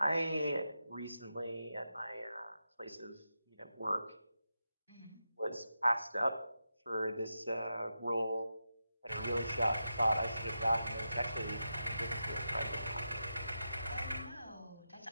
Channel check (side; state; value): both; inverted; correlation -0.89